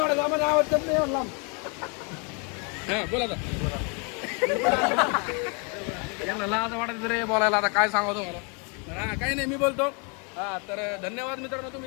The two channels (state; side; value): quieter; right; 34.4 dB